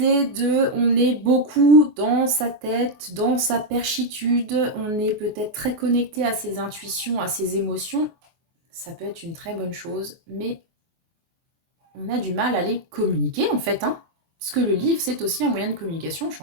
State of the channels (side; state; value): left; late; 24 ms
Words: de, on est beaucoup dans sa tête, dans sa perchitude, on est peut-être très connecté à ses intuitions, à ses émotions, ça peut être une très bonne chose, mais on a du mal à les communiquer en fait, hein. Parce que le livre, c'est aussi un moyen de communication, je